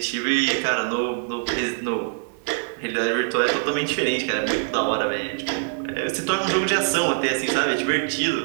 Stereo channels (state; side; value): silent; left; 63 dB below the other